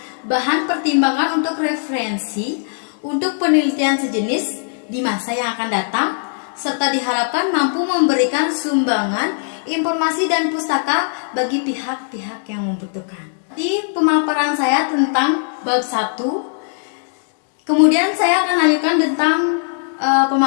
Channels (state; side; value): silent; right; digital silence